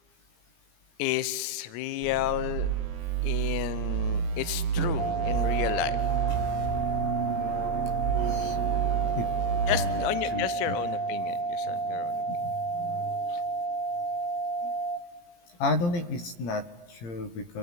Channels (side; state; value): right; late; 17 ms